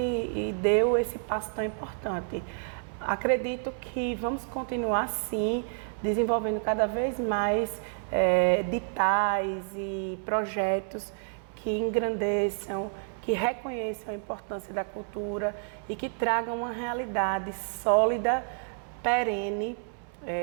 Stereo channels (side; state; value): left; silent; 58 dB below the other